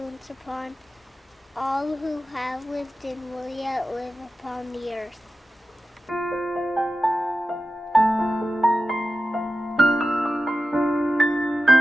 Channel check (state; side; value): normal; both; correlation 0.93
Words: upon all who have lived and will yet live upon the earth.